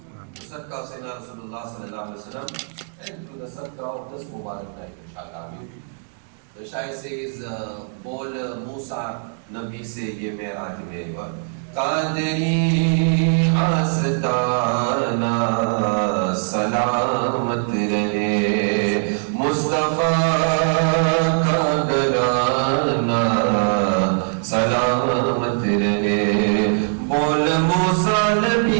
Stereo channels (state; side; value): silent; left; 64 dB below the other